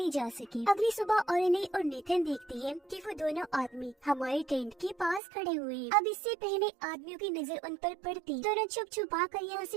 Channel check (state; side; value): drops out; left; at 5.2 s